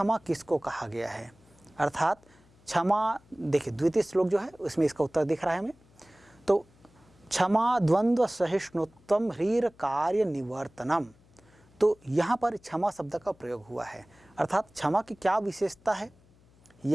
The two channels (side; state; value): left; noise; hum, 29 dB below the sound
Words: किसको कहा गया है, अर्थात क्षमा, देखिए द्वितीय श्लोक जो है उसमें इसका उत्तर दिख रहा है हमें। तो क्षमा द्वंद्व सहिष्णुत्वम ह्रीर कार्य निवर्तनम। तो यहाँ पर क्षमा शब्द का प्रयोग हुआ है, अर्थात क्षमा की क्या विशेषता है,